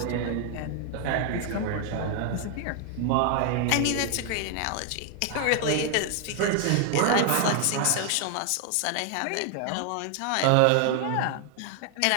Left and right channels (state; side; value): different; both; correlation 0.00